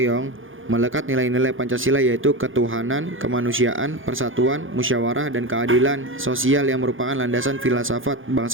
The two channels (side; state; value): left; late; 0.58 ms